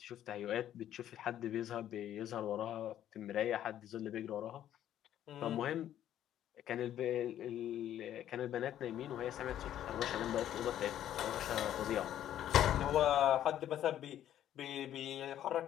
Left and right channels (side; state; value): right; quieter; 11.4 dB